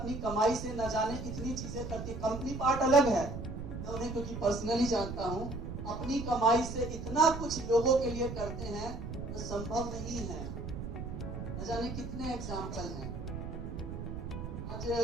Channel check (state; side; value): noise; right; rumble, 7 dB below the sound